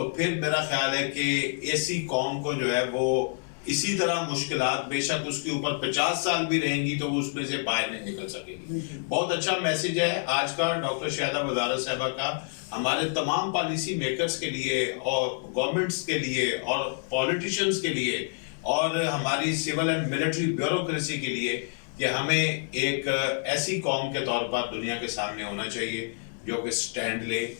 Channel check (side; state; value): right; silent; 60 dB below the other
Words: پھر میرا خیال ہے کہ ایسی قوم کو جو ہے وہ اسی طرح مشکلات بے شک اس کے اوپر 50 سال بھی رہیں گی تو وہ اس میں سے باہر نہیں نکل سکے گی. بہت اچھا میسج ہے آج کا ڈاکٹر شہدہ وزارت صاحبہ کا ہمارے تمام پالیسی میکرز کے لیے اور گورنمنٹس کے لیے اور پولیٹیشنز کے لیے اور ہماری سول اینڈ ملٹری بیوروکریسی کے لیے کہ ہمیں ایک ایسی قوم کے طور پر دنیا کے سامنے ہونا چاہیے جو کہ سٹینڈ لے